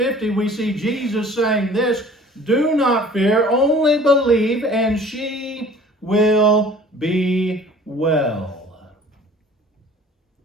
we see Jesus saying this, "Do not fear, only believe, and she will be well."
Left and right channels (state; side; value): normal; both; correlation 0.49